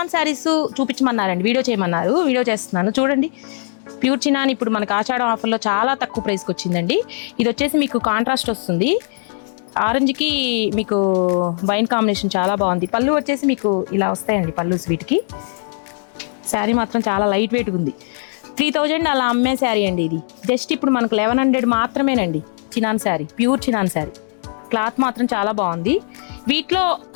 saris చూపించమన్నారండి, video చేయమన్నారు. Video చేస్తున్నాను చూడండి. ప్యూర్ చినాన్ ఇప్పుడు మనకు ఆషాఢం ఆఫర్లో చాలా తక్కువ ప్రైస్కి వచ్చిందండి. ఇది వచ్చేసి మీకు కాంట్రాస్ట్ వస్తుంది, ఆరెంజ్కి మీకు వైన్ కాంబినేషన్ చాలా బాగుంది. పళ్ళు వచ్చేసి మీకు ఇలా వస్తాయండి పళ్ళుస్ వీటికి. శారీ మాత్రం చాలా లైట్ వెయిట్ ఉంది. 3000 అలా అమ్మే శారీ అండి ఇది. జస్ట్ ఇప్పుడు మనకు 1100 మాత్రమేనండి. Chinon sari, pure chinon sari. Cloth మాత్రం చాలా బాగుంది. వీటిలో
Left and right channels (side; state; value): right; silent; 66 dB below the other